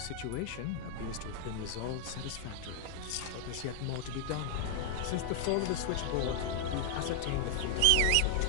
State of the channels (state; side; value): different; both; correlation 0.00